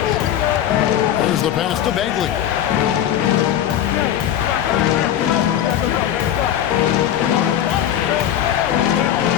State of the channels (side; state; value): right; quieter; 10.7 dB